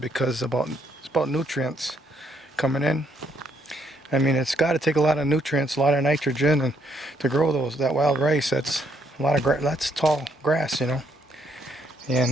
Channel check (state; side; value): normal; both; correlation 0.72